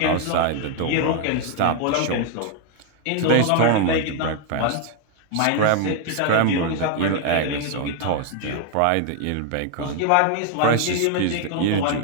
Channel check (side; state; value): both; different; correlation 0.00